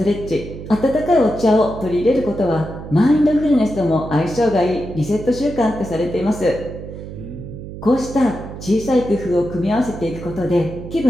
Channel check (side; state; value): right; noise; hum, 11 dB below the sound